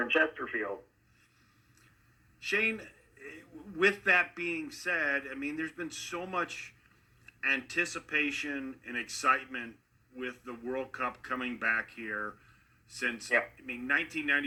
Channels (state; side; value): identical; both; correlation 1.00